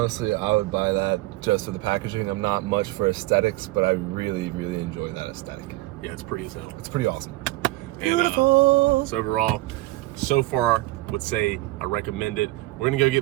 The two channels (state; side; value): quieter; left; 19.6 dB